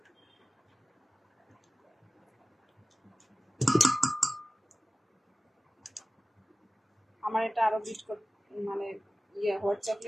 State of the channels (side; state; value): both; normal; correlation 0.97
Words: আমার এটা আরো বিট করতে, মানে হোয়াইট